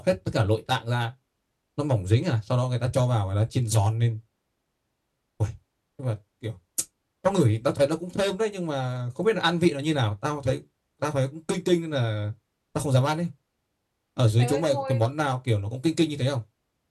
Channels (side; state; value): both; identical; correlation 1.00